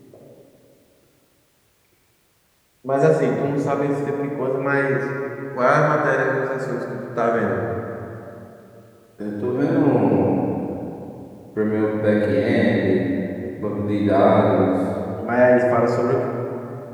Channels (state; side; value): identical; both; correlation 1.00